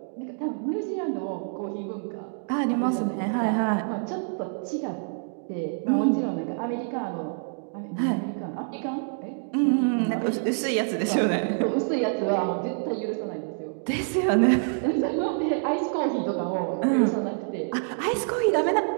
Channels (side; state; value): left; silent; digital silence